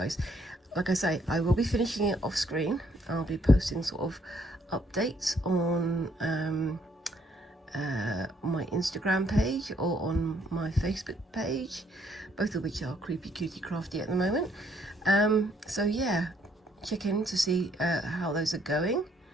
Like I say, I will be finishing it off screen. I'll be posting sort of updates on my Instagram page or on my Facebook page, both of which are Creepy Cutie Crafty at the moment. So yeah, check in to see how those are going,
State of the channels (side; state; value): both; normal; correlation 0.68